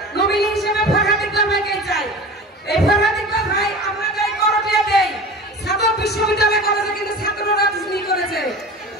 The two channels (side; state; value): both; normal; correlation 0.35